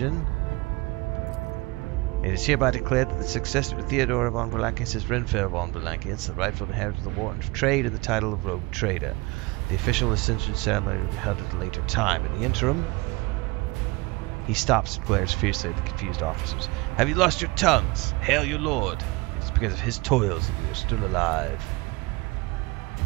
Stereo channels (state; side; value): quieter; left; 24.4 dB